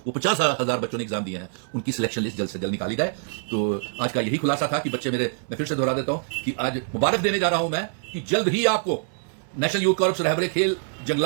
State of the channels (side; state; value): left; silent; 62 dB below the other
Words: वो 50,000 बच्चों ने एग्जाम दिए हैं, उनकी सिलेक्शन लिस्ट जल्द से जल्द निकाली जाए। तो आज का यही खुलासा था कि बच्चे मेरे, मैं फिर से दोहरा देता हूं कि आज मुबारक देने जा रहा हूं मैं कि जल्द ही आपको नेशनल यूथ कॉर्प्स, रहबरे खेल,